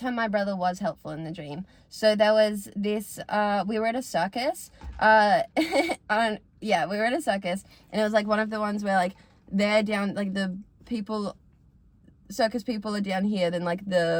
my brother was helpful in the dream. So there was this, we were at a circus, we were at a circus, and it was like one of the ones where like they're down, like the circus people are down here, then like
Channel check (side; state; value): both; identical; correlation 1.00